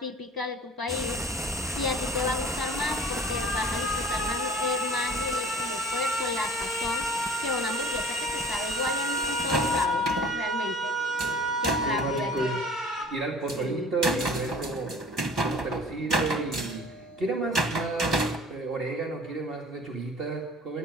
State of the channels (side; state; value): both; normal; correlation 0.45